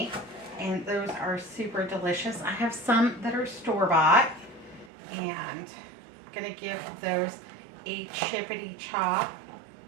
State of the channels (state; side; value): drops out; left; at 4.9 s